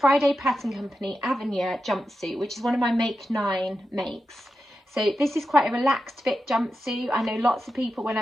Pattern Company Avenir jumpsuit, which is one of my Make 9 makes. So this is quite a relaxed fit jumpsuit. I know lots of people, when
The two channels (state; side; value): normal; both; correlation 0.90